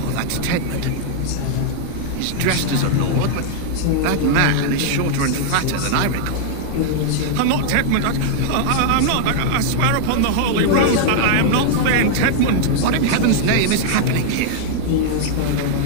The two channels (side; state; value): both; different; correlation 0.00